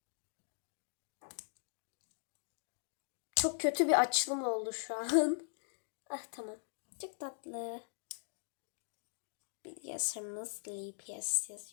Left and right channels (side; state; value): right; silent; digital silence